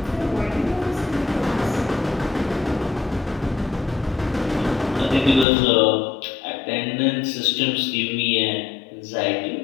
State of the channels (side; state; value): right; drops out; at 5.5 s